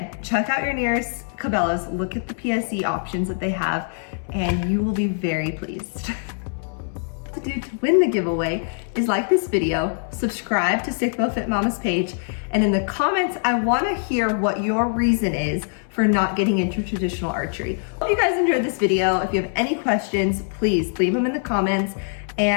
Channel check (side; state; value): right; silent; 63 dB below the other